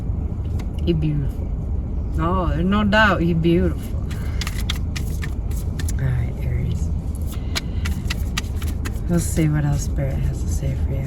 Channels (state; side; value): identical; both; correlation 1.00